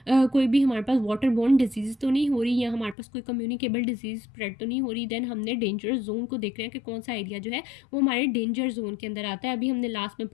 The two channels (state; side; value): drops out; right; at 3.0 s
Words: कोई भी हमारे पास वाटर बॉर्न डिजीज़ तो नहीं हो रही या हमारे पास कोई कम्युनिकेबल डिजीज़ स्प्रेड तो नहीं हो रही। देन हमने डेंजरस जोन को देखना है कि कौन सा एरिया जो है वो हमारे डेंजर जोन के अंदर आता है। अभी हमने लास्ट में